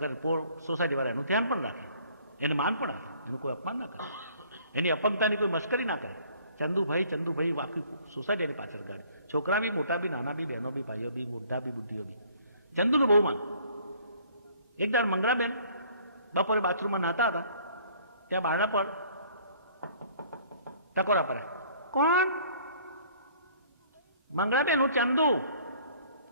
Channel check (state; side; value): inverted; both; correlation -0.57